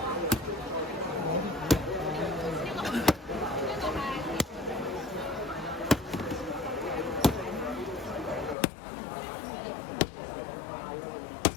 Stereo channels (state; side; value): drops out; right; at 8.6 s